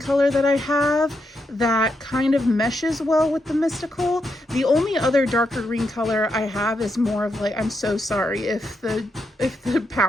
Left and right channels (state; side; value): normal; both; correlation 0.82